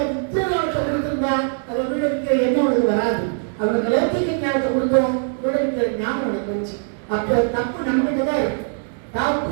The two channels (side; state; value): left; silent; 60 dB below the other